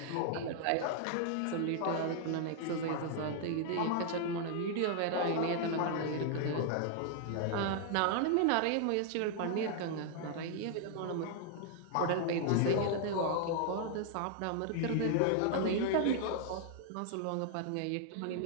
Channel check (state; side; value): different; both; correlation 0.00